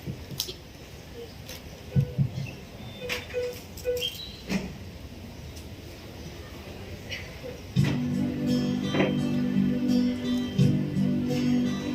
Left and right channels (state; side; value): identical; both; correlation 1.00